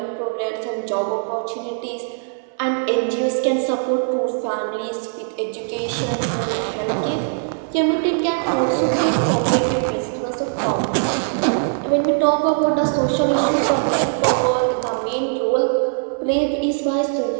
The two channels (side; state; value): left; silent; 65 dB below the other